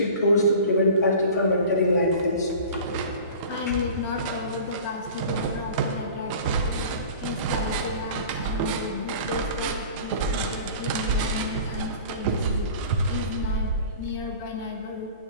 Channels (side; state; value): both; inverted; correlation -0.40